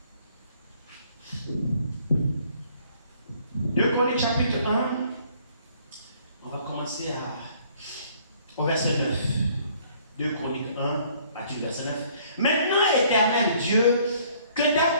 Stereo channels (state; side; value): inverted; both; correlation -0.60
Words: Deux Chroniques, chapitre 1. On va commencer au verset 9. 2 Chroniques 1, partir du verset 9. Maintenant, éternel Dieu, que ta